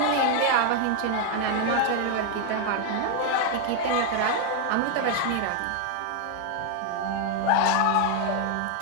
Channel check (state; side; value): different; both; correlation 0.01